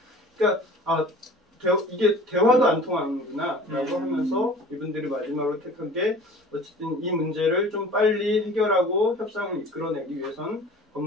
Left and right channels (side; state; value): both; normal; correlation 0.44